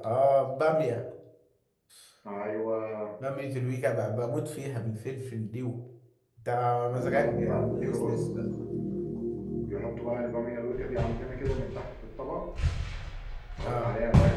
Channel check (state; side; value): identical; both; correlation 1.00